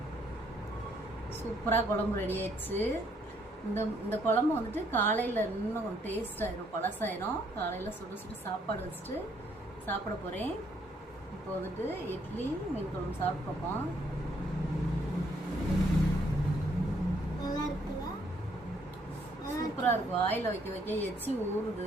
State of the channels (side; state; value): both; normal; correlation 0.69